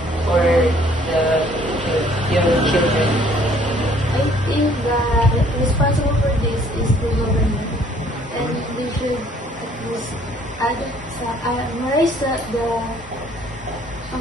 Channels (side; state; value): both; normal; correlation 0.60